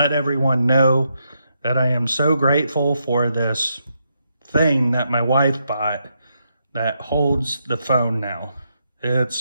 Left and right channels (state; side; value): inverted; both; correlation -0.80